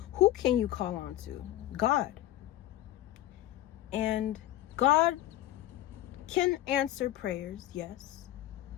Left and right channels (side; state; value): right; quieter; 14.2 dB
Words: who can you call on to? God. And God can answer prayers, yes.